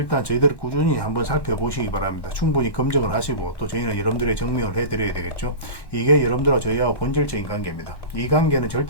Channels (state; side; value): late; right; 1.1 ms